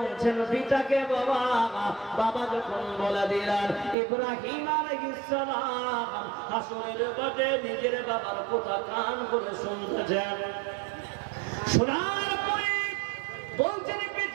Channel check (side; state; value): left; drops out; at 4.0 s